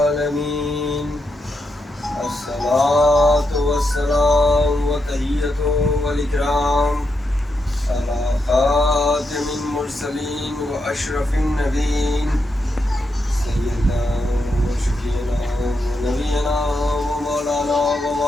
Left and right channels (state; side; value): normal; both; correlation 0.84